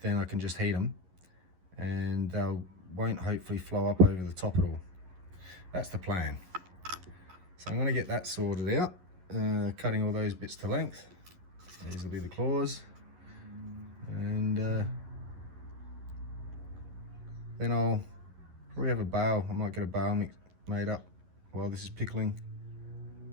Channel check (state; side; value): late; left; 11 ms